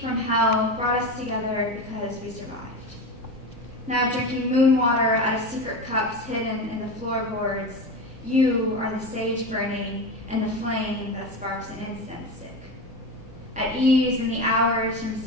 from hell brought us together because we survived. Now drinking moon water out of secret cups hidden in the floorboards, you are the sage burning and the flame that sparks an incense stick. At ease in the hours from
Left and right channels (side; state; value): both; normal; correlation 0.23